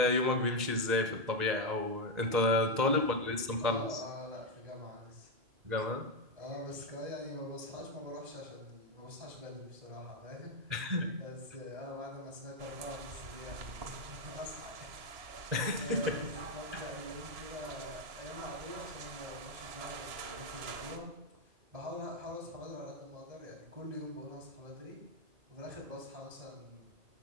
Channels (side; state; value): left; late; 2.0 ms